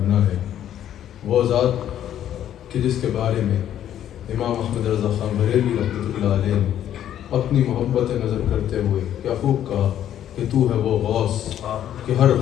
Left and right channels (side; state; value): right; quieter; 10.9 dB